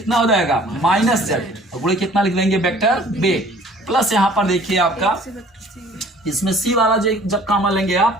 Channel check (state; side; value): normal; both; correlation 0.52